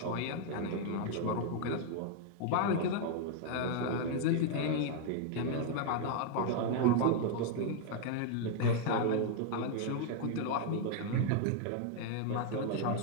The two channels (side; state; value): both; different; correlation 0.00